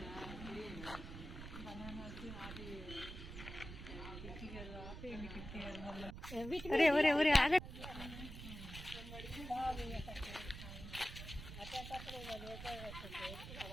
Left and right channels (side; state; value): right; noise; rumble, 10 dB below the sound